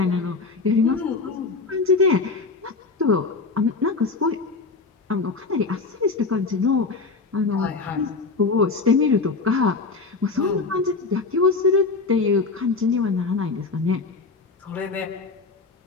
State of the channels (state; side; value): quieter; right; 4.1 dB